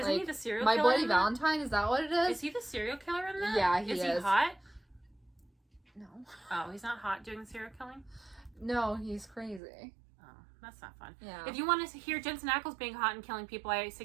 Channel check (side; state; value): left; drops out; at 9.6 s